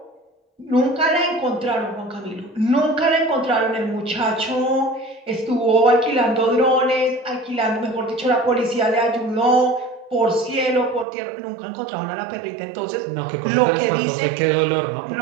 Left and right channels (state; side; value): drops out; left; at 11.1 s